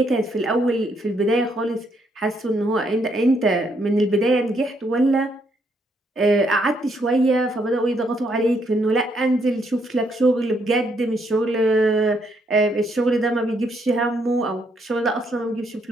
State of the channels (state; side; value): normal; both; correlation 0.73